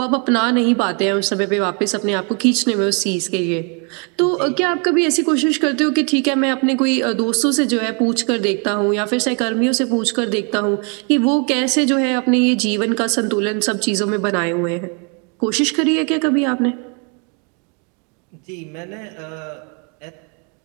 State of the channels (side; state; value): left; quieter; 36.5 dB